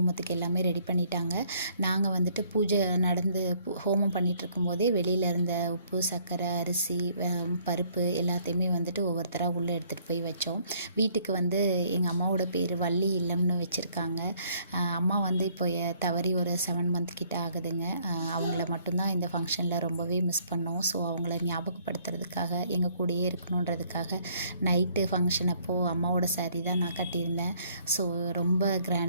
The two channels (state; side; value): inverted; both; correlation -0.63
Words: எல்லாமே ரெடி பண்ணிட்டாங்க. நாங்கள் வந்துட்டு பூஜை நடந்து ஹோமம் பண்ணிகிட்ருக்கும் போதே வெளியில் இருந்த உப்பு, சர்க்கரை, அரிசி, பருப்பு எல்லாத்தையுமே வந்துட்டு ஒவ்வொருத்தராக உள்ளே எடுத்துகிட்டு போய் வச்சோம். வீட்டுக்கு வந்து எங்கள் அம்மாவோட பேர் வள்ளி இல்லம்னு வச்சுருக்காங்க. அம்மா வந்து இப்போ தவறி ஒரு 7 மந்த் கிட்ட ஆகுதுங்க. அவங்கள மட்டும்தான் இந்த ஃபங்க்ஷனில் ரொம்பவே மிஸ் பண்ணோம். ஸோ அவங்கள ஞாபகப்படுத்துறதுக்காக எங்கள் கூடயே இருக்கணுன்றதுக்காக நைட்டு ஃபங்க்ஷன் அப்போது அம்மாவோட சாரீ தான் நான் கட்டியிருந்தேன். ஸோ ரொம்ப